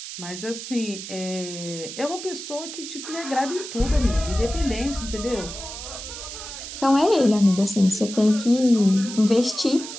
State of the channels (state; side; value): noise; right; hiss, 10 dB below the sound